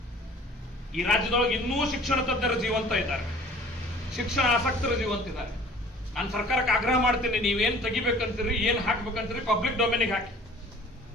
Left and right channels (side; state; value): both; normal; correlation 0.49